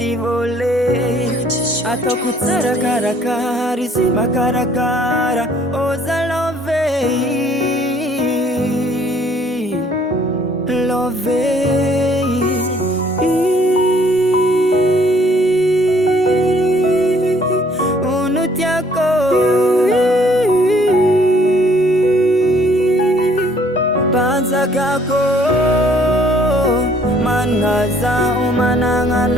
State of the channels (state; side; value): normal; both; correlation 0.61